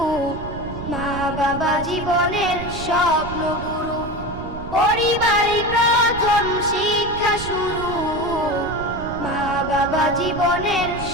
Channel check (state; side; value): noise; right; rumble, 11 dB below the sound